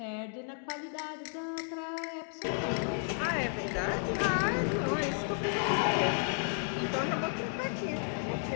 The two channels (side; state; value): right; silent; 56 dB below the other